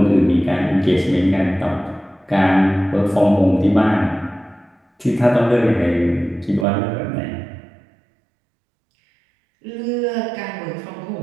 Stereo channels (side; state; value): left; drops out; at 6.7 s